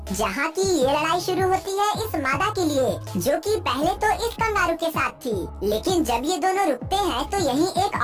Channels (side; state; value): both; identical; correlation 1.00